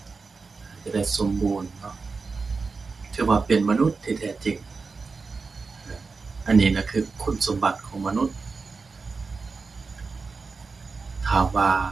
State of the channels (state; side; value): quieter; left; 4.4 dB